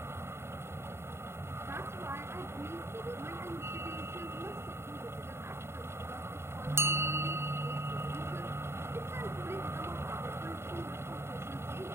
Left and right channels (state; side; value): late; left; 0.12 ms